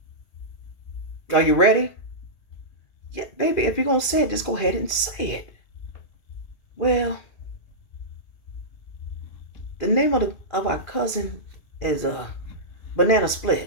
Are you ready? Yeah, baby, if you're going to say it, just go ahead and say it. Well, the name of our cousin is Banana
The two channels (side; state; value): right; late; 2.4 ms